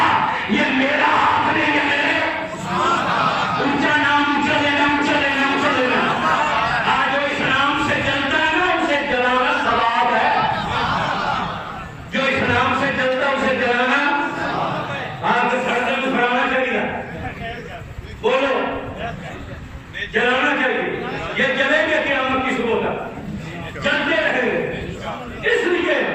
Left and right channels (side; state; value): both; identical; correlation 1.00